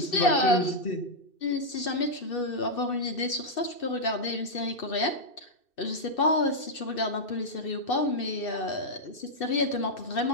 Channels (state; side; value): late; right; 2.6 ms